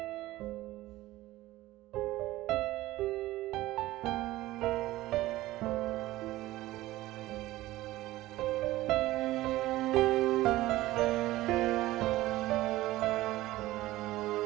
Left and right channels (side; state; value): left; quieter; 17.0 dB